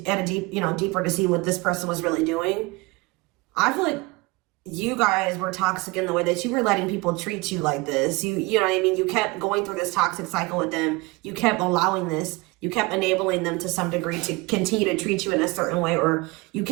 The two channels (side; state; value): left; quieter; 24.7 dB